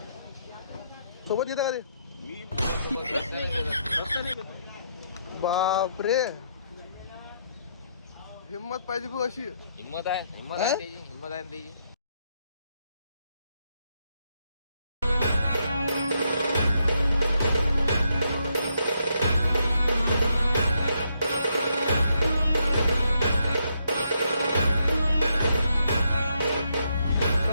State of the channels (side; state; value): both; inverted; correlation -0.77